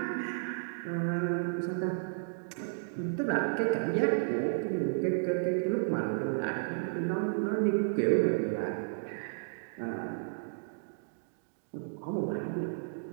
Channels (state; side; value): silent; left; digital silence